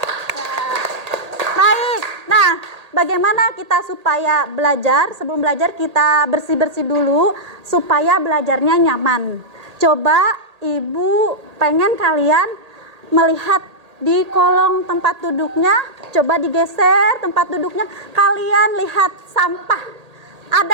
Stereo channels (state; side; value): late; left; 1.8 ms